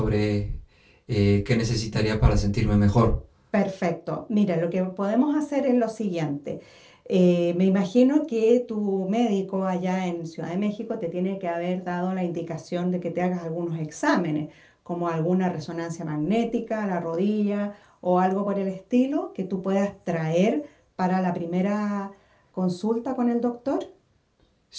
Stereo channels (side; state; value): both; identical; correlation 1.00